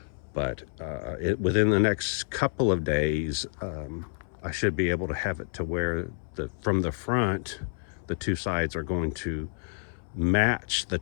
But within the next couple of days, I should be able to have it to where from the front, the two sides are going to match the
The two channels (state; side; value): silent; right; 59 dB below the other